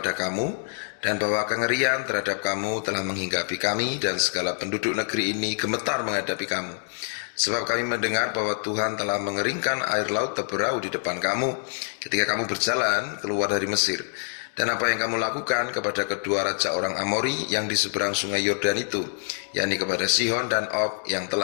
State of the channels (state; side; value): silent; right; 61 dB below the other